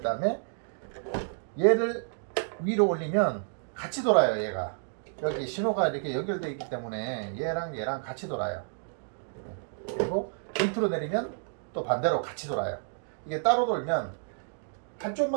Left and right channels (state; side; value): silent; left; digital silence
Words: 다음에 얘를 위로 올리면 같이 돌아요. 얘가 여기 신호가 이렇게 연결되어 있기 때문에 얘랑 같이 돌아요. 그리고 밑으로 내리면 또 반대로 같이 돌아요. 이게 따로 돌면